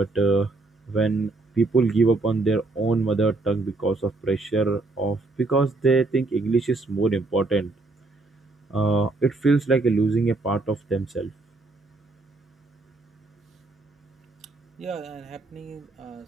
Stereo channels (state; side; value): quieter; left; 3.3 dB